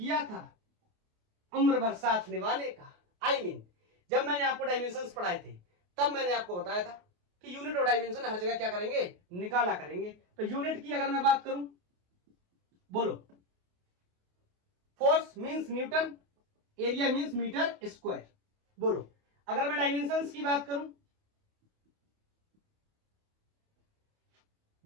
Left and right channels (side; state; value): left; late; 28 ms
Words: था उम्र भर साथ निभाने का। जब मैंने आपको डायमेंशंस पढ़ाए थे तब मैंने आपको बताया था कि यूनिट और डायमेंशन हर जगह क्या करेंगे, निकाला करेंगे। तो यूनिट की अगर मैं बात करूं, बोलो, force means newton, area means metre square. बोलो, अगर मैं डायमेंशंस की बात